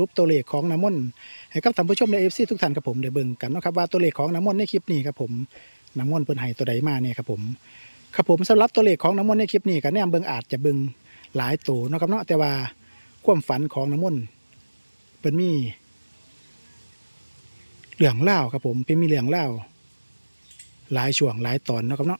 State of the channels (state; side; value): inverted; both; correlation -1.00